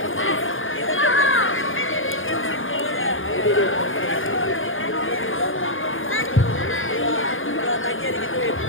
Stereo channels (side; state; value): right; late; 0.58 ms